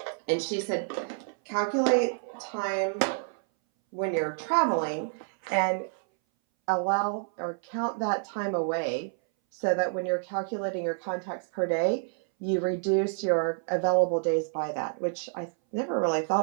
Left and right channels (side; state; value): left; silent; 59 dB below the other